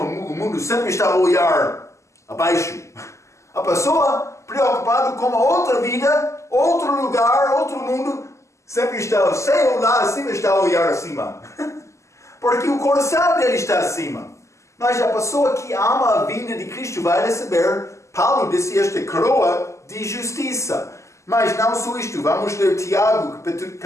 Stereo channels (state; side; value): late; right; 0.14 ms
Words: mundo sempre está a olhar abaixo. A pessoa preocupada com a outra vida, outro lugar, outro mundo, sempre está, sem olhar acima, está a olhar acima. Porque o coração dele está acima. Mas a pessoa que ama a vinda de Cristo vai receber, Paulo disse, esta coroa de justiça. Mas não só isto, vamos ler Tiago,